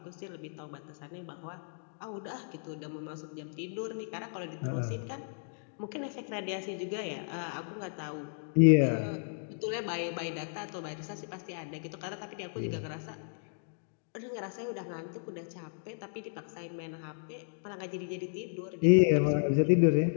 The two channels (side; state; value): right; silent; digital silence